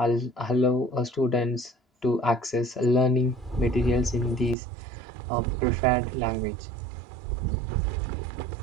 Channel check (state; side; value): drops out; left; at 4.5 s